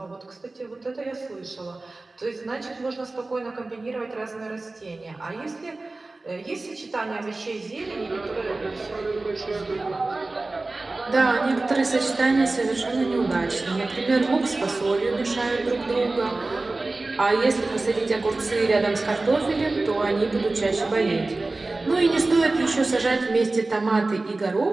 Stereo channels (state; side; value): quieter; left; 3.2 dB